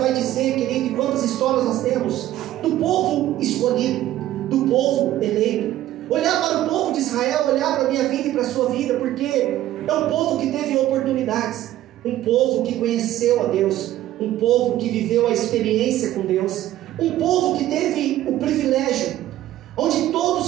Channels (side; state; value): left; quieter; 13.8 dB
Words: dizer, querido, e quantas histórias nós temos do povo escolhido, do povo eleito. Olhar para o povo de Israel, olhar para a minha vida e para a sua vida, porque é um povo que teve oportunidades, um povo que conheceu a Deus, um povo que viveu a experiência com Deus, um povo que teve o privilégio, onde